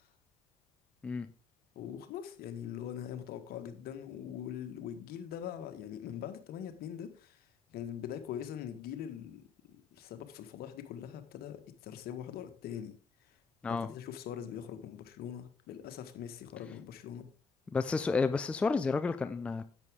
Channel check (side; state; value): right; quieter; 5.2 dB